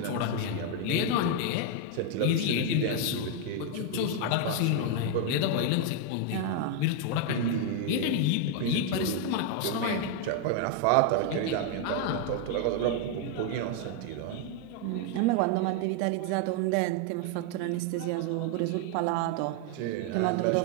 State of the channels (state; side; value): different; both; correlation 0.01